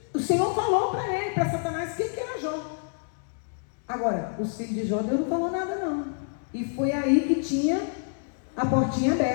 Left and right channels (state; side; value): silent; right; digital silence